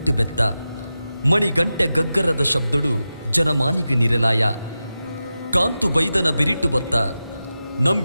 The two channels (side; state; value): both; inverted; correlation -0.92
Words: ಬೆತ್ತ ಮಣಿ ಗಂಟೆ ಗಗ್ಗರದ ಶಬ್ದಡು ಜನಮಾನಿಗೆ ನಿರಲಾಯ ಕಾಂತು ಬೈದನ ಬಿರಿಟು ಬತ್ತ